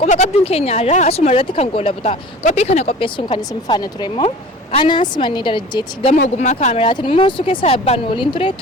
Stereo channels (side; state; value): both; normal; correlation 0.41